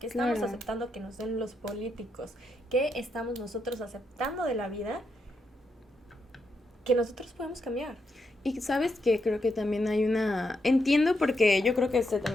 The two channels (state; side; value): normal; both; correlation 0.81